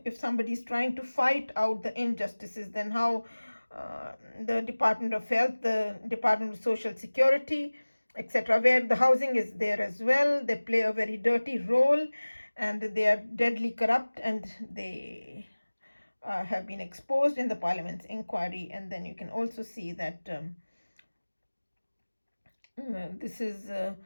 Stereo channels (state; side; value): inverted; both; correlation -1.00